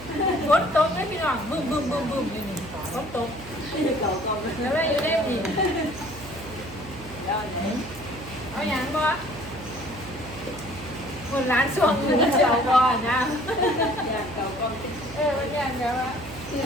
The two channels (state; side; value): noise; right; hum, 16 dB below the sound